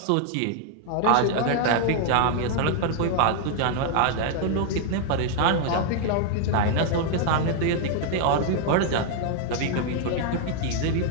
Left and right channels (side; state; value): both; different; correlation 0.00